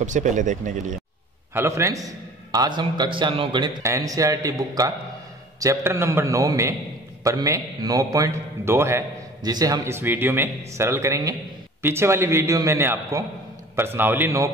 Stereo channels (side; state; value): both; normal; correlation 0.46